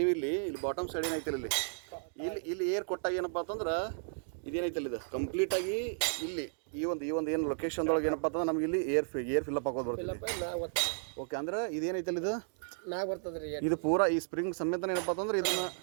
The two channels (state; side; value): silent; left; digital silence